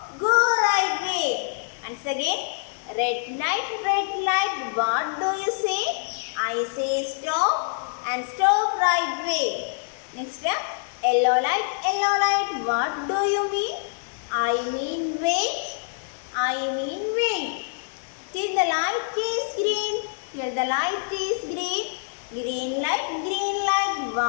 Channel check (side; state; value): right; silent; 56 dB below the other